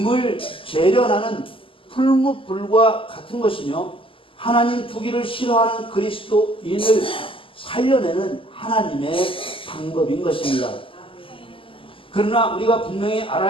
재련하는 풀무불과 같은 것이며 하나님 두기를 싫어하는 그리스도인을 살려내는 하나님의 방법인 것입니다. 그러나 우리가 분명히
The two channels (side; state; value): right; late; 0.25 ms